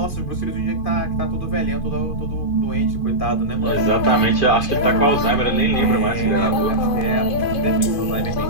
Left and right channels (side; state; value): right; late; 2.5 ms